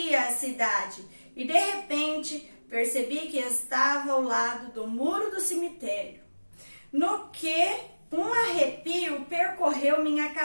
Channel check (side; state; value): both; inverted; correlation -1.00